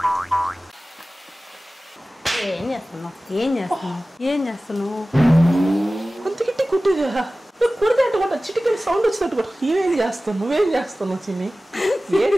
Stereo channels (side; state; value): both; normal; correlation 0.97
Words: ఏం చేస్తున్నావు? అంత గిట్టి కుట్టిగా కుడితే అటు చిటికల్ సౌండ్ వచ్చినట్టు కూడా నువ్వేం చేస్తున్నావు చిన్ని? ఏది